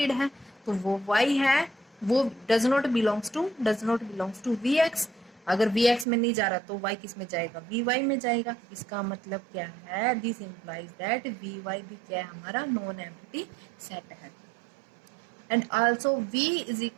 है। तो वो y है वो does not belongs to vx। अगर vx में नहीं जा रहा तो y किस में जाएगा, vy में जाएगा। इसका मतलब क्या है, दिस इंप्लाइज दैट vy भी क्या है, हमारा नॉन एम्प्टी सेट है। And also v is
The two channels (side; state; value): left; drops out; at 6.1 s